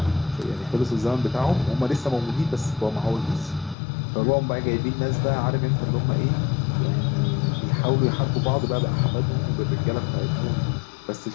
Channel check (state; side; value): drops out; right; at 3.8 s